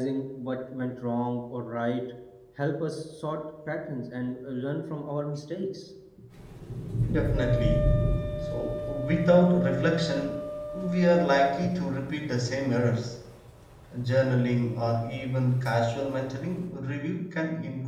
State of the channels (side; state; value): both; identical; correlation 1.00